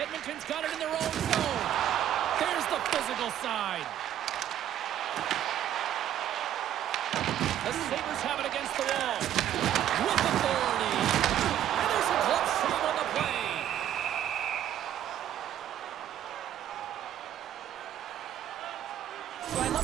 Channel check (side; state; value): left; quieter; 11.1 dB